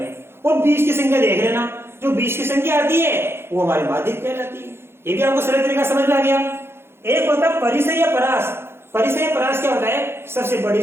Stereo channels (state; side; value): late; left; 0.12 ms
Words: और बीच की संख्या देख लेना, जो बीच की संख्या आती है वो हमारी माध्यक कहलाती है। ये भी आपको सरल तरीका समझ में आ गया। एक होता है परिसर या परास। परिसर या परास क्या होता है? सबसे बड़ी